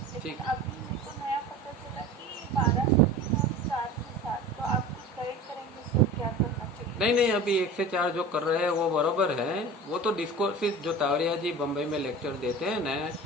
लेकिन अभी मेरे को नया पता चला कि 12 से 3 और 4 से 7। तो आप कुछ गाइड करेंगे सर क्या करना चाहिए? नहीं, अभी 1 से 4 जो कर रहे हैं वो बराबर है। वो तो डिस्कोर्सिस जो तावरिया जी बम्बई में लेक्चर देते हैं ना,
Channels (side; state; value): both; normal; correlation 0.37